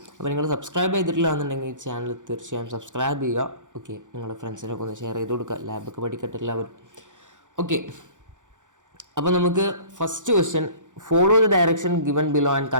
അപ്പോൾ നിങ്ങൾ സബ്സ്ക്രൈബ് ചെയ്തിട്ടില്ല എന്നുണ്ടെങ്കിൽ ചാനൽ തീർച്ചയായും സബ്സ്ക്രൈബ് ചെയ്യുക. ഓക്കെ, നിങ്ങളുടെ ഫ്രണ്ട്സിനൊക്കെ ഒന്ന് ഷെയർ ചെയ്ത് കൊടുക്കുക, ലാബൊക്കെ പഠിക്കട്ടെ എല്ലാവരും. ഓക്കെ, അപ്പോൾ നമുക്ക് first question, follow the direction given below and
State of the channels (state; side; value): late; left; 0.86 ms